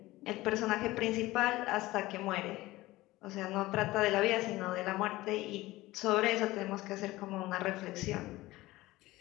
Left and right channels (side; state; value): right; quieter; 18.5 dB